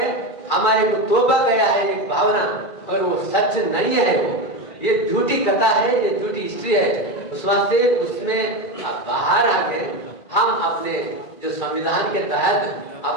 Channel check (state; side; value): late; right; 2.4 ms